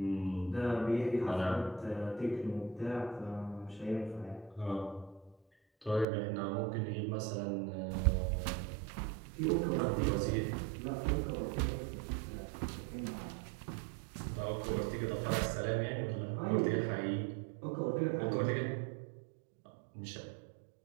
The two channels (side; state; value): left; drops out; at 6.1 s